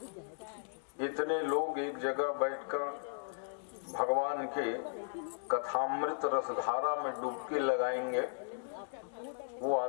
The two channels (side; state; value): right; silent; digital silence